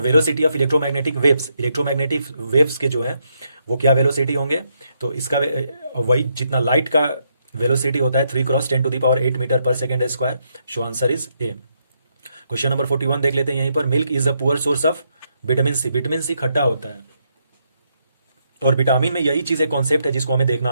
of electromagnetic waves, electromagnetic waves के जो है वो क्या velocity होंगे, तो इसका वही जितना लाइट का वेलोसिटी होता है 3 × 10⁸ मीटर पर second square, so answer is A. Question number 41 देख लेते हैं यहीं पर। Milk is the poor source of vitamin C, vitamin C खट्टा होता है, और विटामिन में यही चीज एक कॉन्सेप्ट है जिसको हमें देखना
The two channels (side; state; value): both; inverted; correlation -0.77